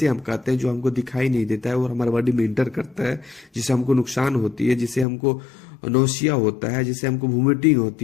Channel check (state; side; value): drops out; right; at 5.1 s